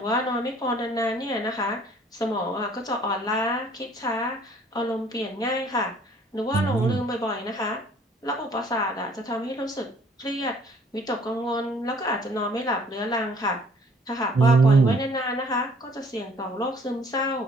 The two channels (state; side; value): normal; both; correlation 0.57